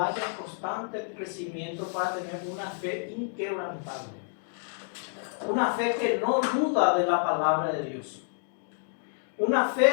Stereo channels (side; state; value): right; silent; digital silence